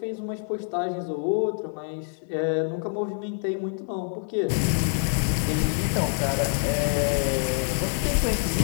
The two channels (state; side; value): silent; right; 61 dB below the other